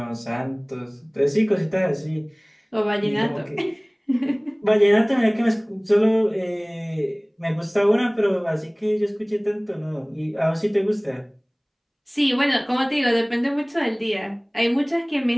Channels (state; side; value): identical; both; correlation 1.00